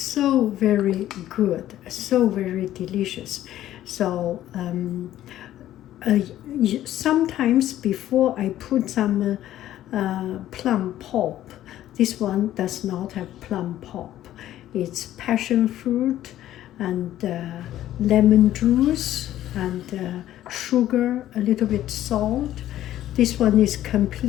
very good, so very delicious. So sometimes before I put some plum pulp. This one does not have plum pulp. It's passion fruit and lemon juice and sugar, a little bit salt. This one is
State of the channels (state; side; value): quieter; right; 13.0 dB